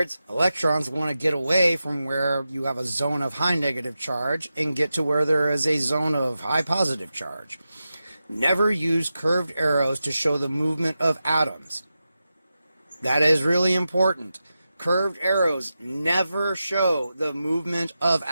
electrons want to get away from where you have a zone of high negative charge and get to where there is a zone of high positive charge. Never use curved arrows to show the movement of atoms. That is really important. Curved arrows never show the movement of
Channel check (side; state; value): both; inverted; correlation -0.91